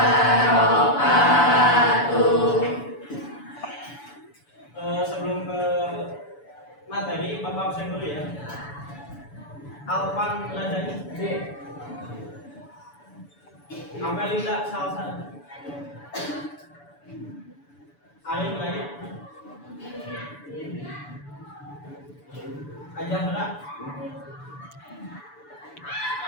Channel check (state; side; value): late; right; 7.0 ms